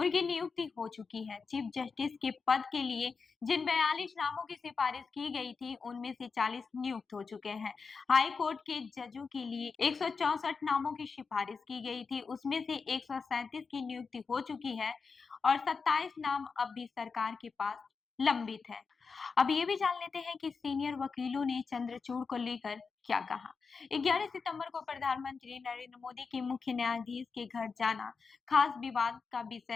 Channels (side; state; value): right; quieter; 5.0 dB